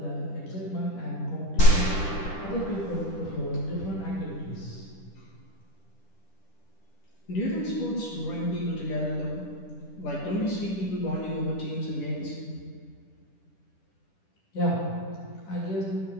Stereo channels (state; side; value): late; right; 10 ms